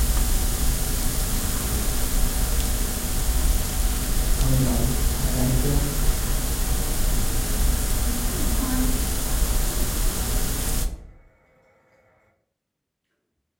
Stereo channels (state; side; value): identical; both; correlation 1.00